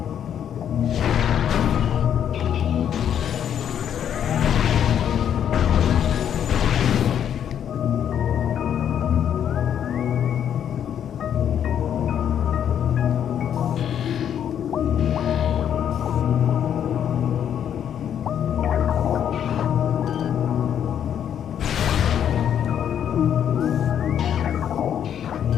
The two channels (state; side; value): quieter; right; 9.3 dB